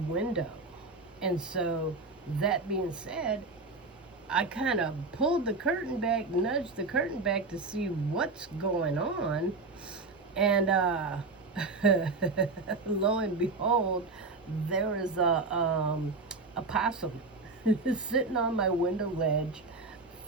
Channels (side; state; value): left; quieter; 3.7 dB